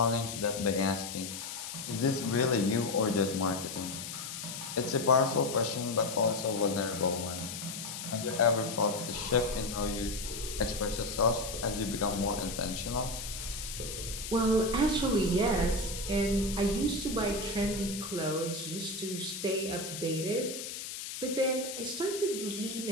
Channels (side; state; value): left; noise; hiss, 7 dB below the sound